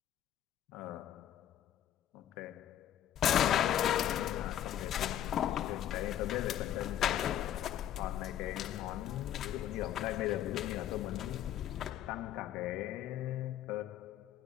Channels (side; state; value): right; quieter; 11.3 dB